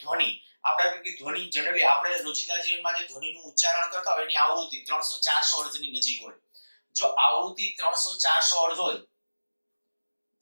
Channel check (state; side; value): inverted; both; correlation -1.00